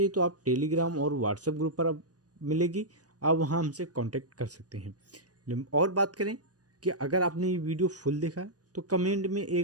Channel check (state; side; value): late; left; 0.68 ms